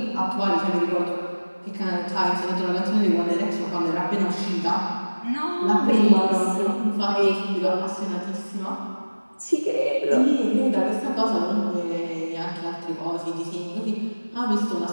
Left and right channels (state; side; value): inverted; both; correlation -1.00